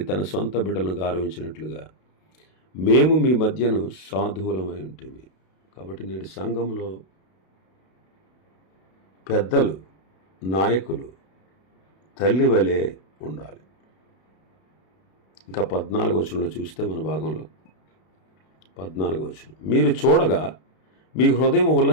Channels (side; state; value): right; late; 32 ms